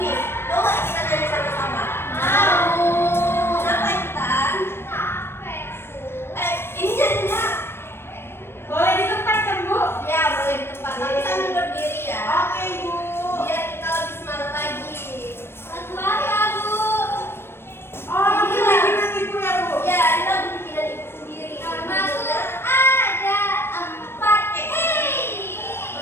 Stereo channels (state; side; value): late; right; 0.12 ms